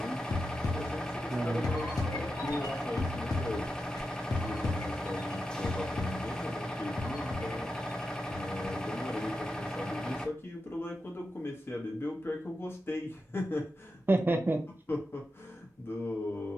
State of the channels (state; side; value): normal; both; correlation 0.89